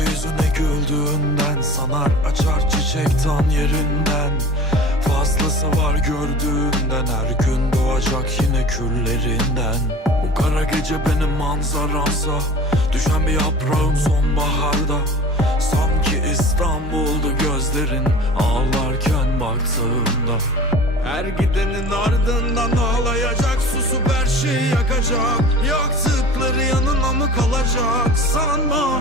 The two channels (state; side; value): normal; both; correlation 0.40